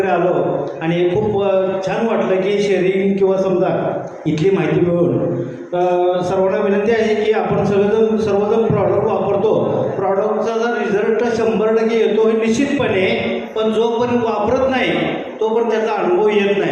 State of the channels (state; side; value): identical; both; correlation 1.00